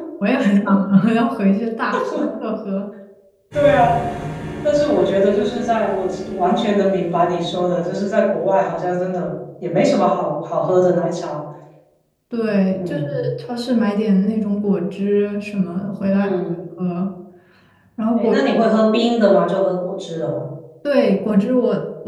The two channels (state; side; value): identical; both; correlation 1.00